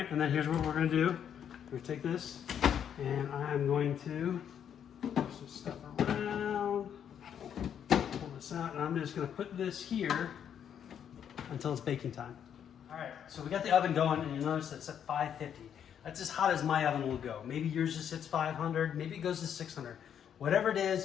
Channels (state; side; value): quieter; right; 8.8 dB